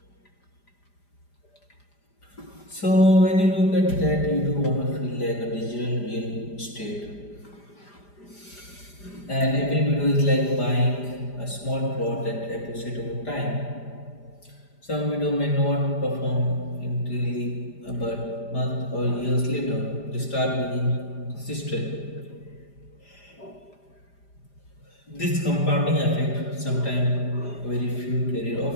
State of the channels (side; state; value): right; late; 5.0 ms